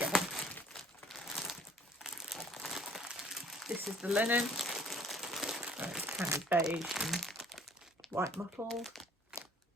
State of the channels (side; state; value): both; normal; correlation 0.55